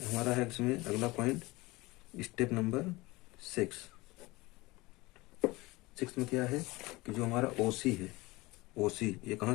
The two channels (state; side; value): quieter; right; 21.6 dB